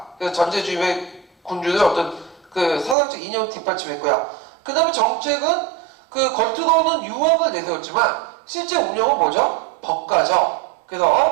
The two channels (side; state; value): left; drops out; at 3.0 s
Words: 그래서 전제주의의 군주의 어떤 그 사상적 이념을 뒷받침했고요. 그 다음에 정책은 그 겉으로는 유학을 내세웠지만 실제 운영은 뭐죠? 법가죠.